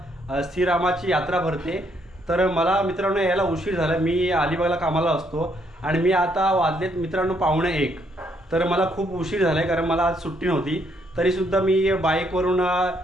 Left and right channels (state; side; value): normal; both; correlation 0.71